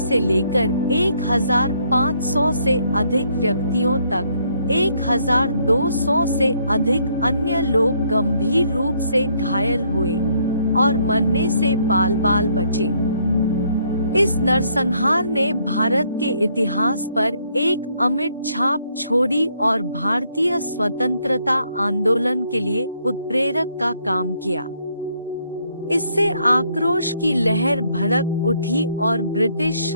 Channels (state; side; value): inverted; both; correlation -0.69